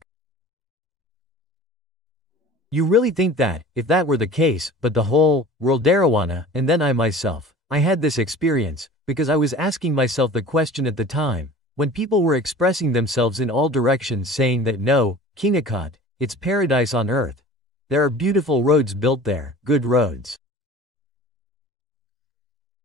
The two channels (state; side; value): normal; both; correlation 0.42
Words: You really think that, if that were the case, but the whole world Darawana, and then I myself, I had this experience, because I was asking myself the question at the time, when people were expressing themselves in all directions saying that no, Kingakat, it's paradise on earth. There are beautiful roads built there, good roads.